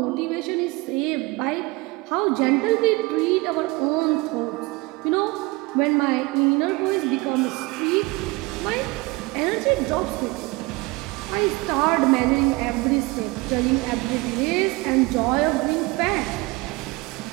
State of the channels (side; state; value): left; quieter; 23.7 dB